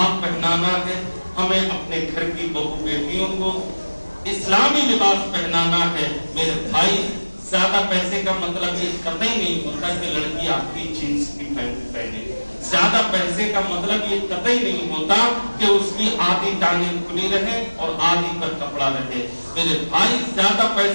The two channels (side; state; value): both; inverted; correlation -1.00